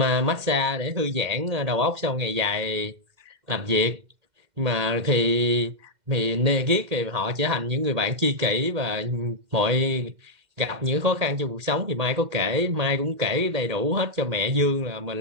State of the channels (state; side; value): late; left; 2.1 ms